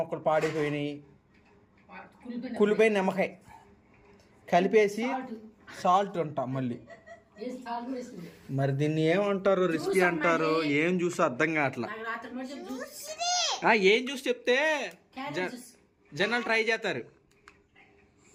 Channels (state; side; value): identical; both; correlation 1.00